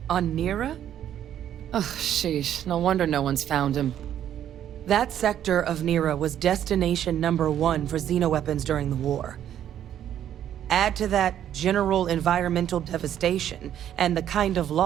On Nira? Oh, sheesh. No wonder no one's found him. That sector of Nera was destination #1 for xenoweapons during the war. Add to that general environmental devastation and the kind of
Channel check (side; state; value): left; quieter; 10.5 dB